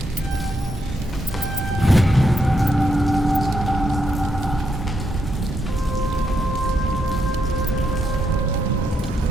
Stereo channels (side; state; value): both; normal; correlation 0.80